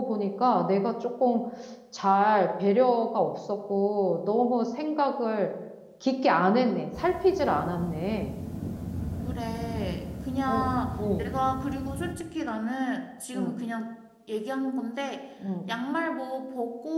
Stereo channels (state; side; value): identical; both; correlation 1.00